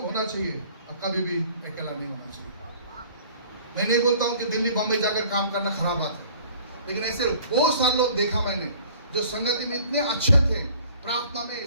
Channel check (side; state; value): both; inverted; correlation -0.52